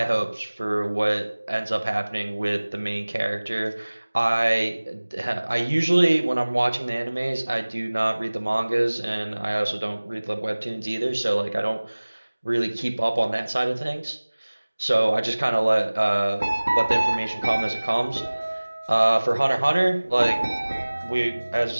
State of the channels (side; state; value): both; inverted; correlation -1.00